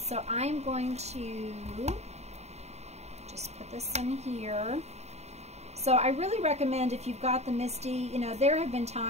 I'm going to just put this in here. So I really recommend, if you've got the Misty, you know, there have been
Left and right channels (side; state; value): left; late; 0.32 ms